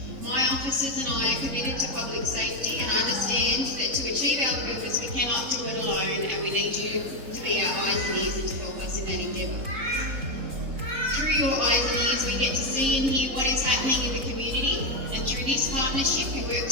My officers and I are committed to public safety and understand that to achieve our purpose we cannot do it alone, and we need you to be our eyes and ears and to help us in that endeavour. Through your eyes and ears we get to see and hear what is happening in the community, and through this partnership we work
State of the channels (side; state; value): left; late; 3.7 ms